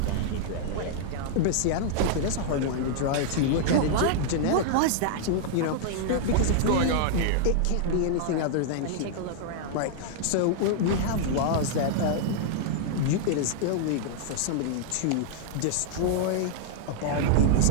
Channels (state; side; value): different; both; correlation -0.01